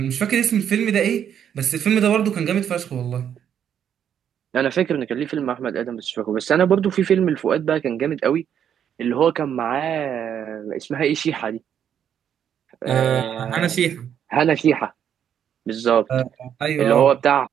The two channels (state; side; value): quieter; left; 9.0 dB